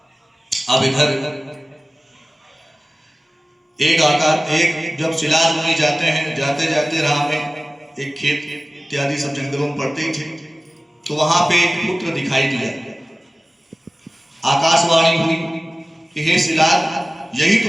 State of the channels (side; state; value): both; normal; correlation 0.97